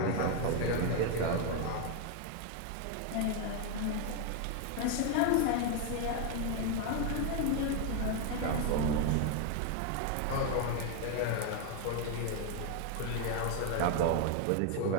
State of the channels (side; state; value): both; different; correlation 0.01